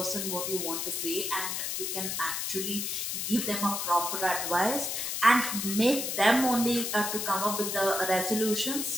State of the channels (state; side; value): noise; left; hiss, 2 dB below the sound